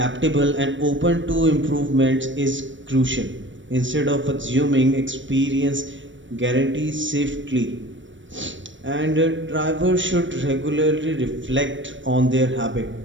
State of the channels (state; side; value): late; left; 0.55 ms